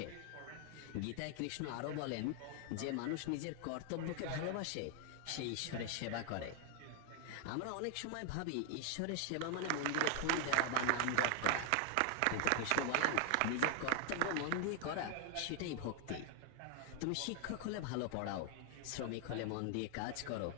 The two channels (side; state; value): both; different; correlation 0.00